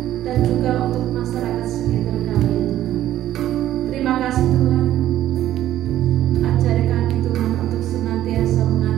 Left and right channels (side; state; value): left; quieter; 12.9 dB